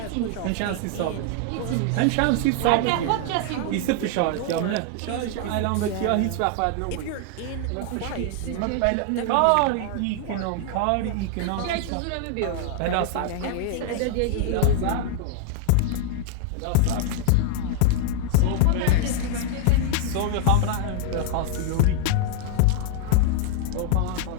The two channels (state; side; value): different; both; correlation 0.00